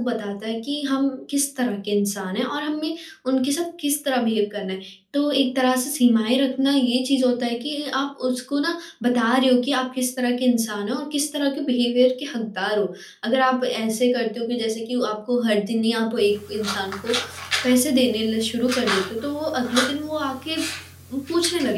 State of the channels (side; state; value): both; identical; correlation 1.00